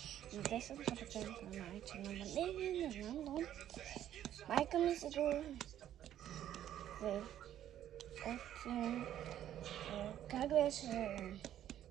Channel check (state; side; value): quieter; left; 11.4 dB